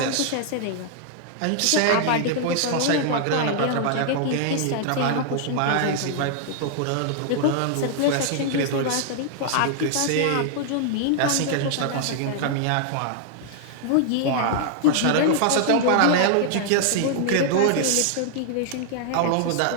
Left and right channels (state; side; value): different; both; correlation -0.01